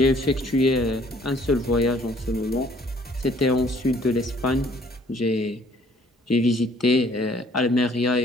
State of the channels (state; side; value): normal; both; correlation 0.60